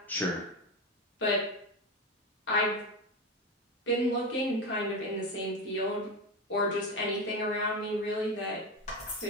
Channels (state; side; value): normal; both; correlation 0.17